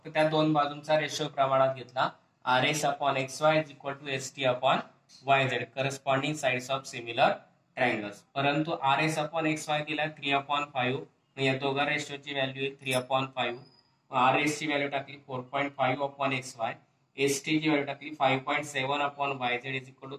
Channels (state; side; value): identical; both; correlation 1.00